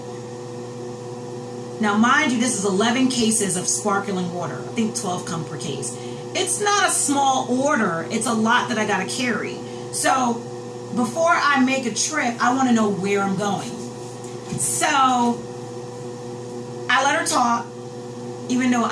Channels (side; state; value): both; identical; correlation 1.00